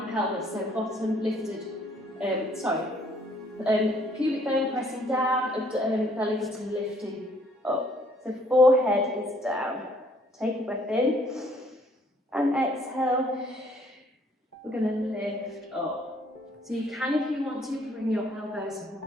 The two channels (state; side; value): normal; both; correlation 0.63